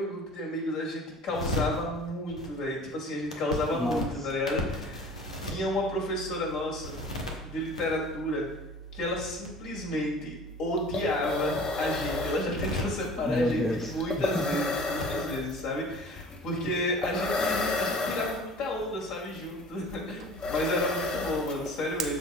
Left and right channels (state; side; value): normal; both; correlation 0.44